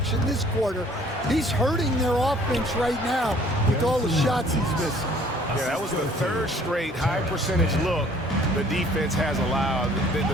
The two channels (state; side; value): normal; both; correlation 0.56